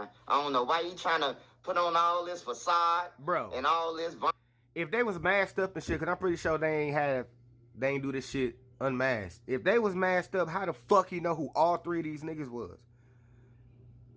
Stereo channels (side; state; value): both; identical; correlation 1.00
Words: I don't know why you trying to put on all this facade, bro, and all this. If they was masked up and shit, cause I'm pretty sure they ain't do this shit unmasked. If they was masked up, how the fuck he know who all three of these niggas was?